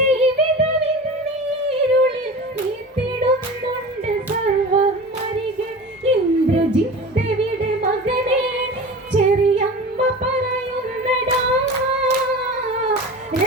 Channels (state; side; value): normal; both; correlation 0.34